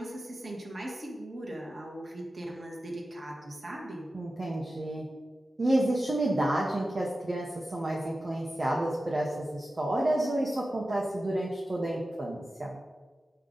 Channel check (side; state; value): both; normal; correlation 0.94